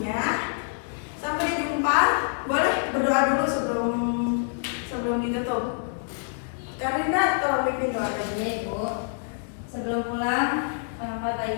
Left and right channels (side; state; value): right; silent; digital silence